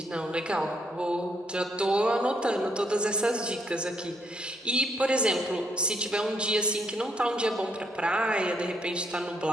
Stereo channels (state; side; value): normal; both; correlation 0.73